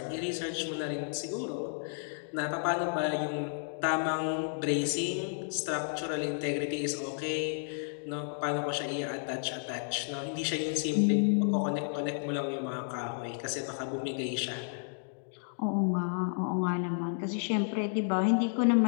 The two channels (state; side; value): silent; right; digital silence